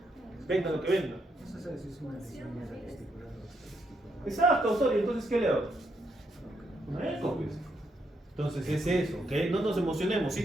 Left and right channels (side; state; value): both; normal; correlation 0.77